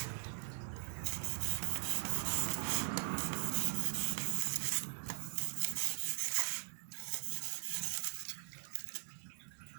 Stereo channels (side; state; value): left; silent; digital silence